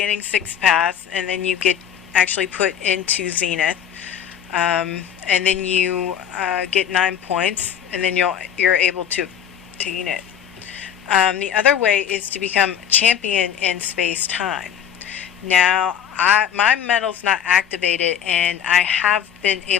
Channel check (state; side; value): quieter; right; 9.1 dB